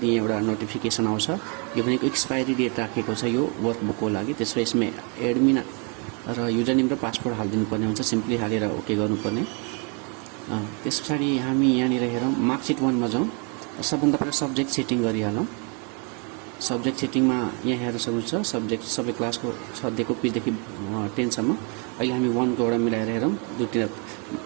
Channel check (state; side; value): quieter; left; 36.0 dB